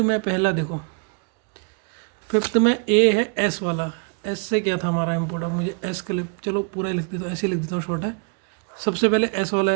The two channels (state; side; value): quieter; left; 37.9 dB